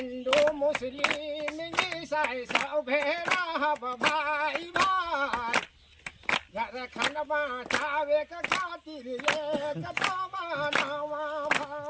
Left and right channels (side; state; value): both; identical; correlation 1.00